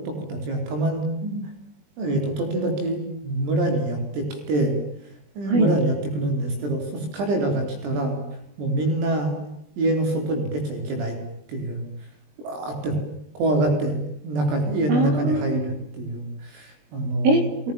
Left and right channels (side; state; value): left; late; 20 ms